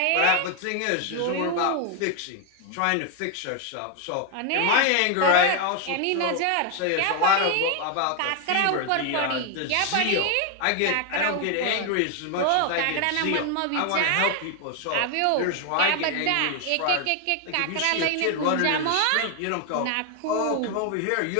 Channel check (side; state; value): both; different; correlation 0.01